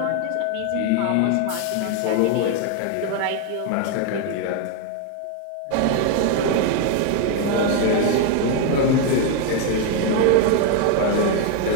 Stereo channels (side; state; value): both; different; correlation 0.01